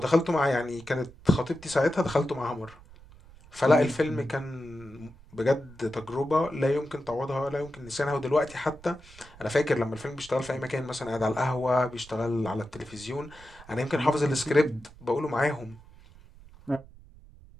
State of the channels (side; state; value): right; noise; rumble, 22 dB below the sound